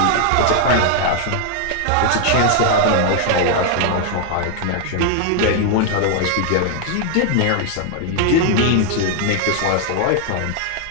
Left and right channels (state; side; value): different; both; correlation 0.00